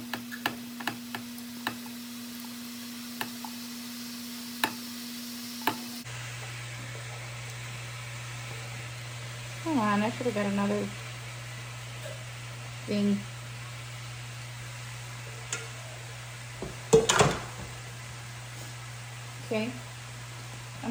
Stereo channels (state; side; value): identical; both; correlation 1.00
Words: Come on, I should have got another thing. Okay,